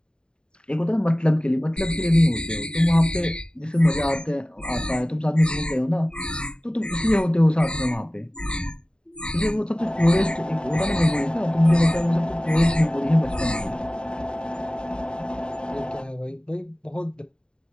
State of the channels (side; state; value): right; late; 0.049 ms